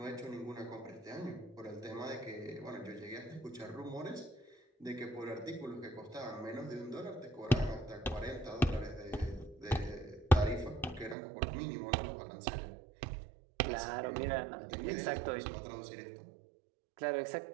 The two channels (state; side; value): drops out; left; at 11.2 s